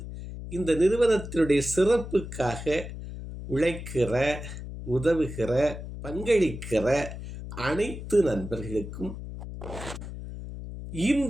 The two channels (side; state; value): left; noise; hum, 10 dB below the sound